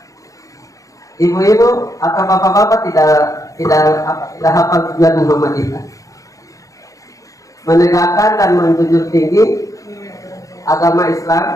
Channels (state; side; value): late; right; 0.16 ms